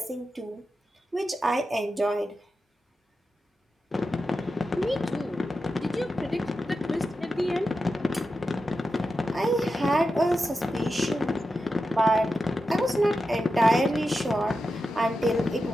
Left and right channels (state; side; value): normal; both; correlation 0.90